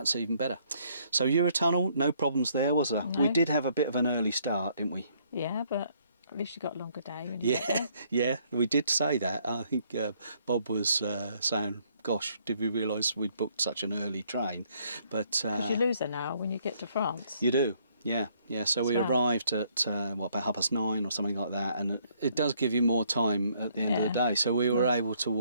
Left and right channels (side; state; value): both; inverted; correlation -0.67